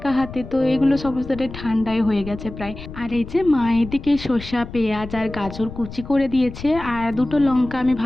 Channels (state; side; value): noise; left; rumble, 13 dB below the sound